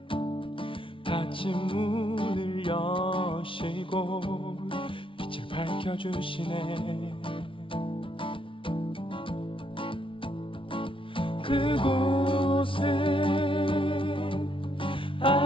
닫힌 문을 여시고 빛을 밝혀주시네. 그곳은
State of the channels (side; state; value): right; late; 0.25 ms